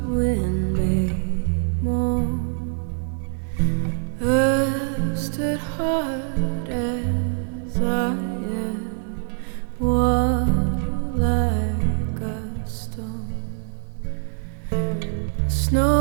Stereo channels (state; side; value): silent; left; 63 dB below the other